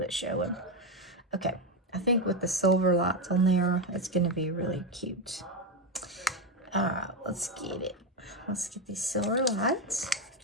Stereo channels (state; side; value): normal; both; correlation 0.11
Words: showing. Okay, I think with the silver lights on there, it's going to be really cute. All right, let's get it. Let's get these silver lights.